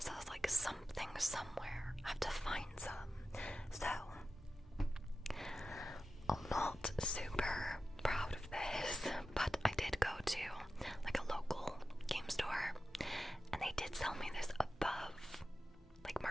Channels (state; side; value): normal; both; correlation 0.93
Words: I was like, something somewhere, I have to find some. So I'm not super proud of this, but I did go to like a local game store, and they did sell me this above like